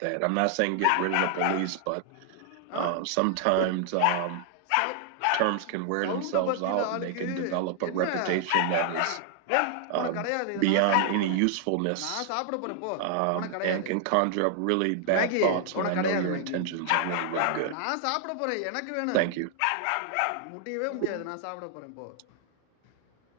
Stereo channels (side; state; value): both; different; correlation 0.00